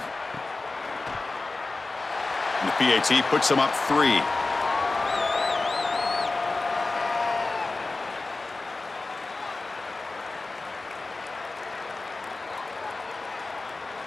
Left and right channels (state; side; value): quieter; right; 3.4 dB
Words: the PAT puts them up 3.